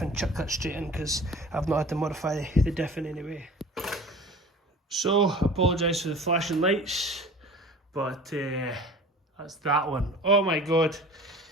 and chuck that straight in, because I've not had to modify the diff in any way. So, apologise for the flashing lights, but that's that one. Oh my god,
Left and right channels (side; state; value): both; normal; correlation 0.41